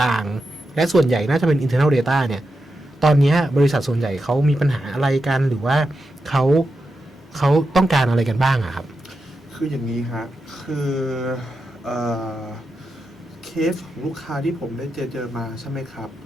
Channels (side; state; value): both; normal; correlation 0.88